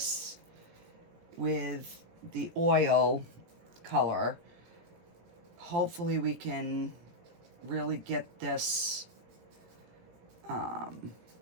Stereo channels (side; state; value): left; late; 17 ms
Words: with the oil color, hopefully we can really get this